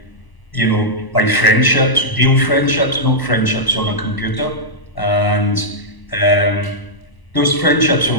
friendships, real friendships, not friendships on a computer. And those friendships are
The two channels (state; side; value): late; right; 1.0 ms